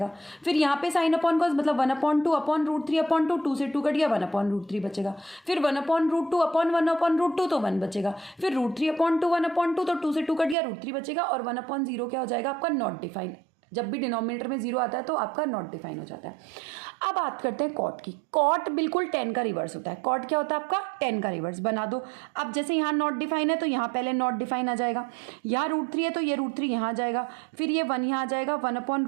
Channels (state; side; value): drops out; left; at 10.6 s